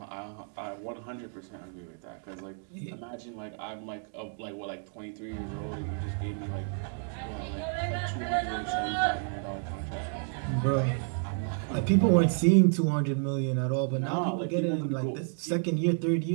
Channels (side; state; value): left; silent; 56 dB below the other